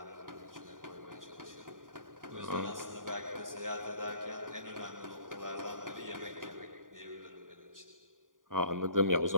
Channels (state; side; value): late; left; 0.89 ms